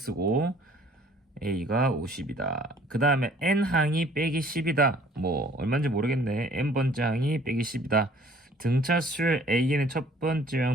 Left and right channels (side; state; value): both; normal; correlation 0.55